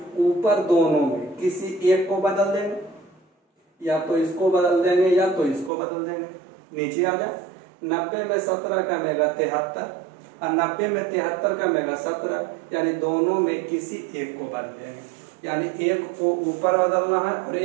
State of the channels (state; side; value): drops out; left; at 5.7 s